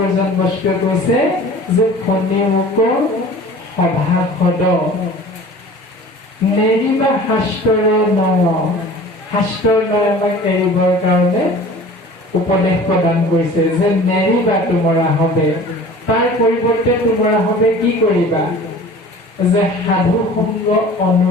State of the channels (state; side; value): normal; both; correlation 0.43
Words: বস্তুৱে কৈছে যে শুনি মোক সভাসদ নেৰিবা শাস্ত্ৰৰ নয়, শাস্ত্ৰৰ নয় আমাক এৰিবৰ কাৰণে উপদেশ প্ৰদান কৰিছে যে নেৰিবা তোমৰা হবে, তাৰ পৰিৱৰ্তে তোমৰা হবে কি কৰিবা, যে সাধু সংগ